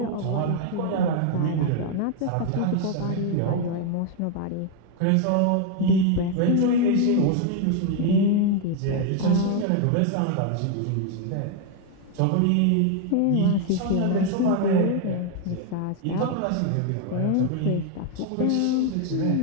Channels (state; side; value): different; both; correlation 0.01